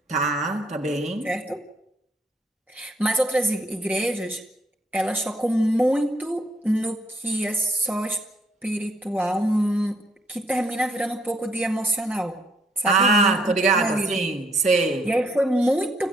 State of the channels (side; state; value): both; normal; correlation 0.70